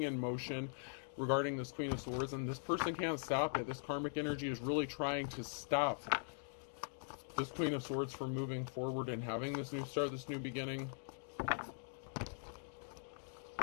in motion regarding this Queen of Swords, and this person can't stop it. This karmic energy is really trying to stop this Queen of Swords from moving forward and having this new start, this new beginning.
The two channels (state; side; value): silent; right; digital silence